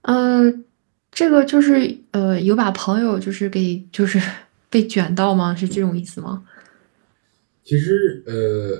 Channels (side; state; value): left; silent; digital silence